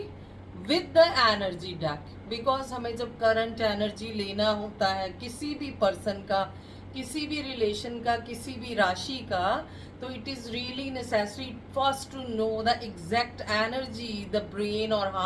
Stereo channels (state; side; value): identical; both; correlation 1.00